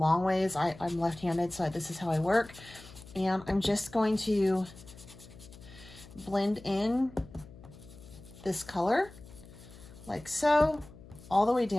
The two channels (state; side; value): noise; left; hum, 19 dB below the sound